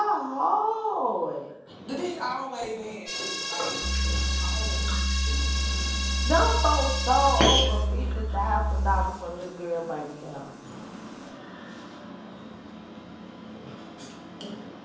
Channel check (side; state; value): both; identical; correlation 1.00